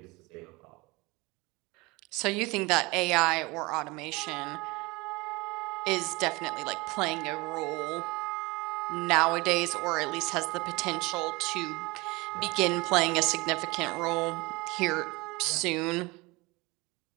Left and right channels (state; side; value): quieter; left; 24.1 dB